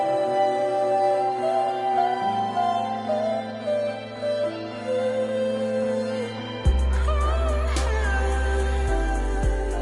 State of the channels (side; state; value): both; identical; correlation 1.00